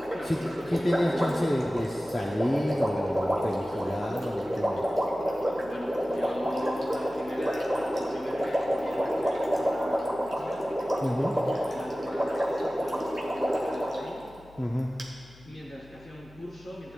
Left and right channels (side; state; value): left; noise; hum, 23 dB below the sound